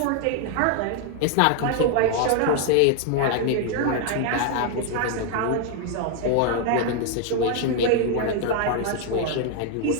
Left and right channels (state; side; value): different; both; correlation 0.00